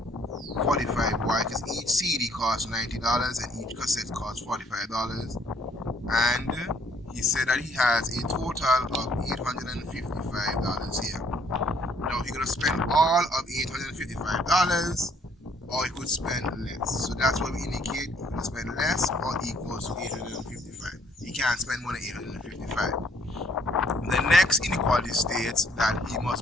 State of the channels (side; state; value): both; normal; correlation 0.64